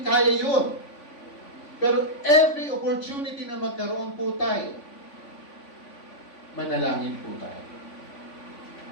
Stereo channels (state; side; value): late; right; 3.5 ms